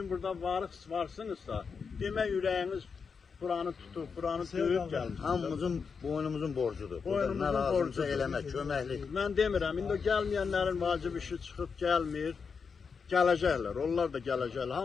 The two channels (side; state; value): right; quieter; 5.6 dB